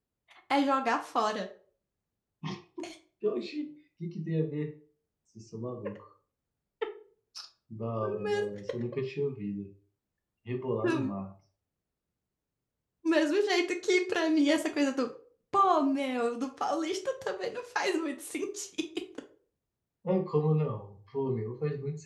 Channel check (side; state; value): both; identical; correlation 1.00